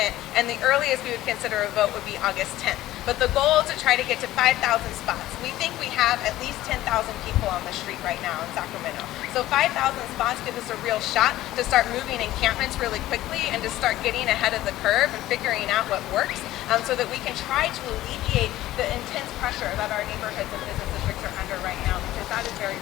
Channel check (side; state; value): right; quieter; 15.2 dB